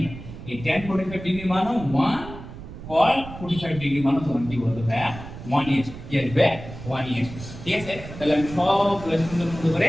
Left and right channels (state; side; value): noise; right; rumble, 13 dB below the sound